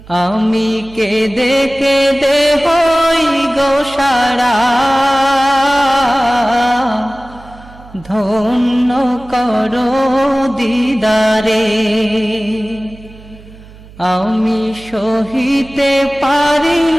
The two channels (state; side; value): noise; right; hum, 21 dB below the sound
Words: আমি কেঁদে কেঁদে হই গো সারা, ধন্য করো দিদারে। আমি সহিতে পারি